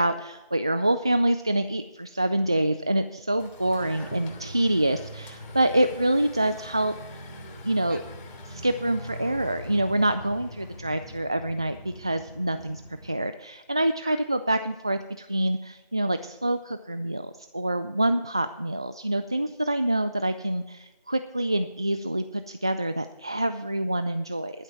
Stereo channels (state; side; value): inverted; both; correlation -0.90